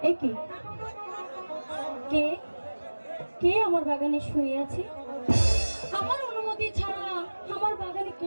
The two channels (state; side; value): inverted; both; correlation -1.00